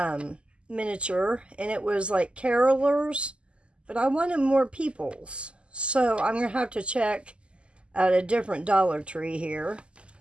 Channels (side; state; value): left; late; 0.053 ms